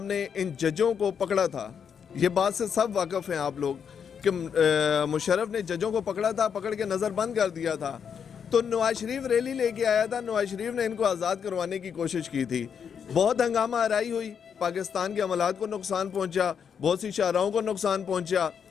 نے ان ججوں کو پکڑا تھا، یہ بات سے سب واقف ہیں آپ لوگ کہ مشرف نے ججوں کو پکڑا تھا، پکڑ کے نظر بند کر دیا تھا، تو نواز شریف ریلی لے کے آیا تھا، نواز شریف نے ان کو آزاد کروانے کی کوشش کی تھی، بہت ہنگامہ آرائی ہوئی، پاکستان کے عملات کو نقصان پہنچا، بہت سی شاہراہوں کو نقصان پہنچا۔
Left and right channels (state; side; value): quieter; right; 7.3 dB